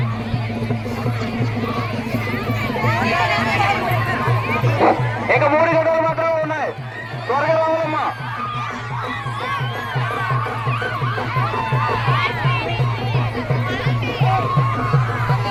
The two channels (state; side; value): identical; both; correlation 1.00